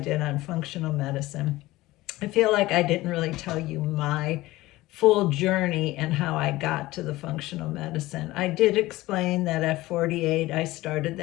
on functional medicine. I feel like I didn't really tell you my full journey and how I got to the functional medicine. I did explain that at 48 I started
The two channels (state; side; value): quieter; right; 18.2 dB